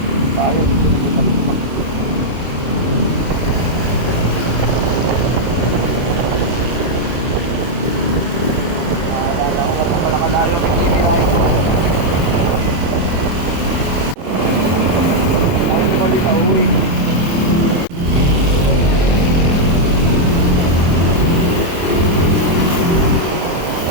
tayo dito dito. Akala ko nga pa pala kalayo ang pagkikilayo. Tayo naman di pa uwi.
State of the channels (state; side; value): late; left; 24 ms